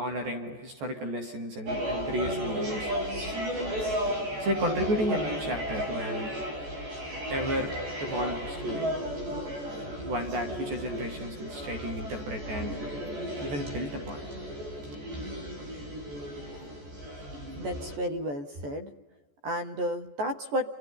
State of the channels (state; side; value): late; left; 14 ms